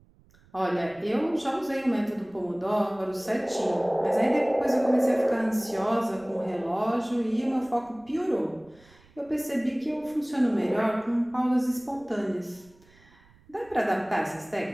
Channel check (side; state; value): right; noise; rumble, 29 dB below the sound